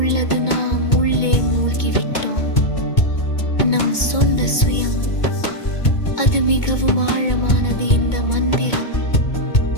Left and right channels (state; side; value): late; right; 2.2 ms